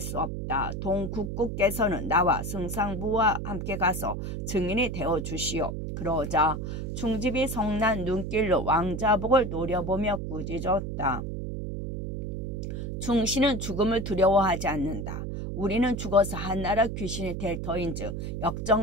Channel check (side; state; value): right; noise; hum, 5 dB below the sound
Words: 없다. 동국국께서는 나와 승상부와 함께 가서 증인이 되어주시오. 그러자 충집이 성난 눈길로 왕자복을 노려보며 꾸짖었다. 충신은 죽음을 두려워하지 않는다. 우리는 죽어서 한나라 귀신이 될 터인즉